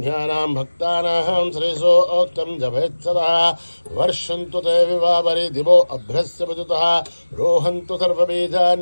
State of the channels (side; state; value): both; inverted; correlation -1.00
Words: भक्तानां श्रीसोक्तं जपेत्सदा वर्षन्तु ते विवावरि दिवो अभ्रस्य विदुतः रोहन्तु